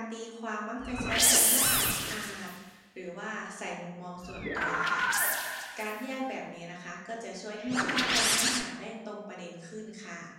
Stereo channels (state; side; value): identical; both; correlation 1.00